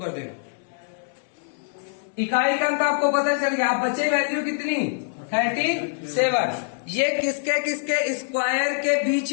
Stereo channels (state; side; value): silent; right; digital silence